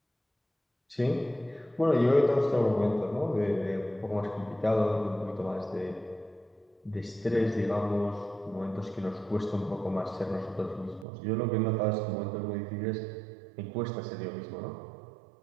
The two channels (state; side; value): drops out; left; at 11.1 s